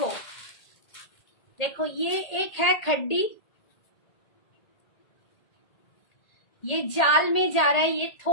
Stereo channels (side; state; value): right; late; 1.8 ms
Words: देखो ये एक है खड्डी, ये जाल में जा रहा है, ये